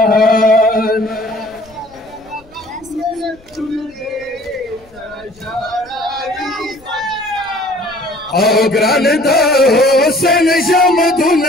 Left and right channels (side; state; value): left; noise; rumble, 28 dB below the sound